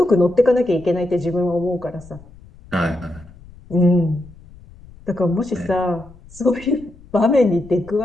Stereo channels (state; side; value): noise; left; rumble, 22 dB below the sound